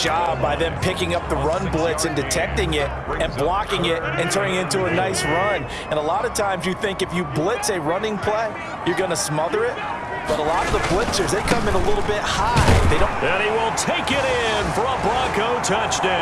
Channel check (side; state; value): both; identical; correlation 1.00